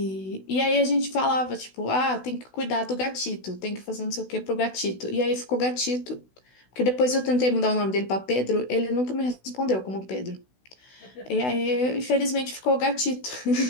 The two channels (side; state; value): right; late; 16 ms